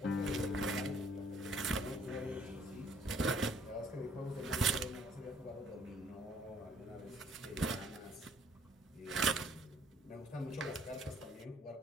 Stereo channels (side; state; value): both; normal; correlation 0.60